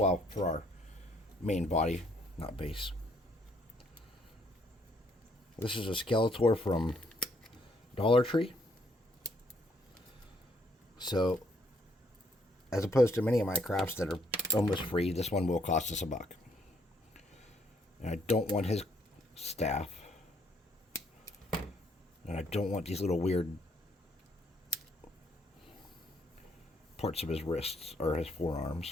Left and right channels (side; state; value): both; normal; correlation 0.69